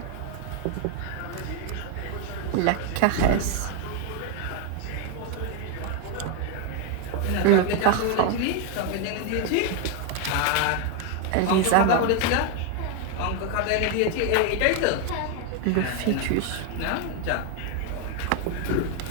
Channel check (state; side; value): different; both; correlation 0.01